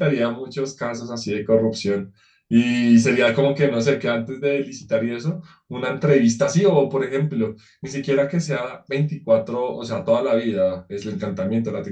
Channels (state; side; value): identical; both; correlation 1.00